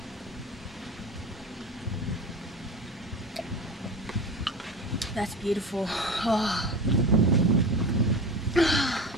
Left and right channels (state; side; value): normal; both; correlation 0.30